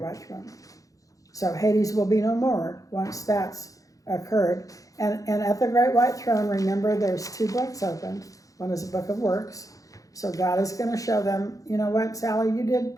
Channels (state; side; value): late; right; 0.17 ms